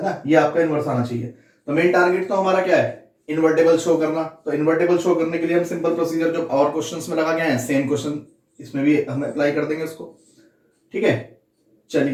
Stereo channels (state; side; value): identical; both; correlation 1.00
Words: ना, ये आपका इनवर्स आना चाहिए. तो मेन टारगेट तो हमारा क्या है, इन्वर्टेबल शो करना. तो इन्वर्टेबल शो करने के लिए हम सिंपल प्रोसीजर जो और क्वेश्चंस में लगा गए हैं, सेम क्वेश्चन इसमें भी हम अप्लाई कर देंगे उसको. ठीक है,